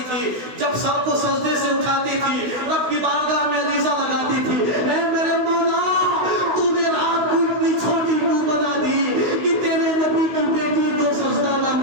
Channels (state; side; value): late; left; 16 ms